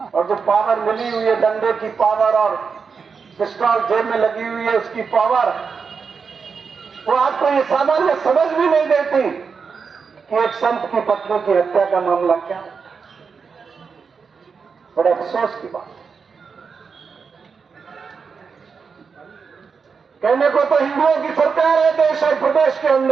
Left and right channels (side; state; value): left; quieter; 5.6 dB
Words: और जो पावर मिली हुई है, डंडे की पावर और पिस्टल जेब में लगी हुई है उसकी पावर, वो आपको ये सामान्य समझ भी नहीं देती कि एक संत की पत्नी की हत्या का मामला क्या है। बड़े अफसोस की बात। कहने को तो हिंदुओं की सरकार है देश और प्रदेश के